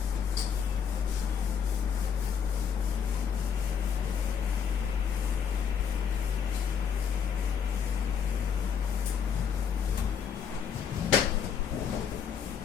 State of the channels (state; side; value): quieter; right; 7.3 dB